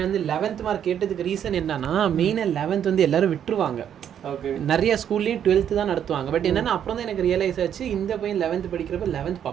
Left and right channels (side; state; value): left; quieter; 9.3 dB